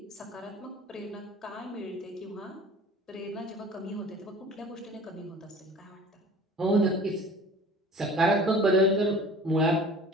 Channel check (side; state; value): both; normal; correlation 0.44